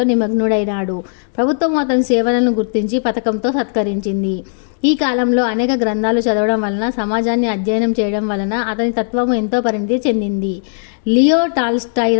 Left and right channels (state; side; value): silent; right; digital silence